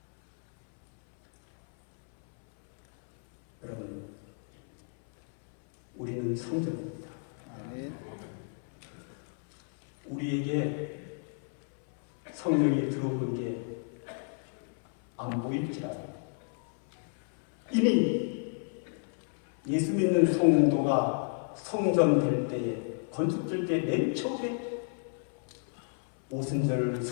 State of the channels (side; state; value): right; silent; 57 dB below the other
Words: 여러분, 우리는 성전입니다. 우리에게 성령이 들어오는 게 안 보일지라도 이미 예수 믿는 성도가 성전 될 때에, 건축될 때 맨 처음에 오순절